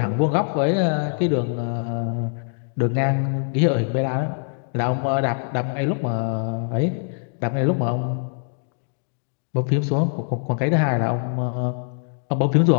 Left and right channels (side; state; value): right; silent; 63 dB below the other